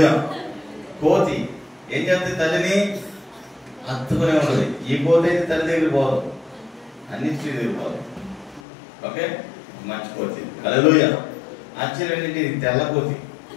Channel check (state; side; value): drops out; right; at 8.6 s